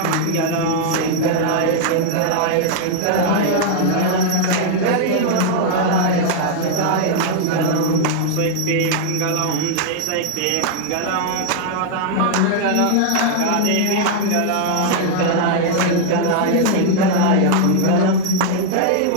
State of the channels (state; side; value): different; both; correlation 0.00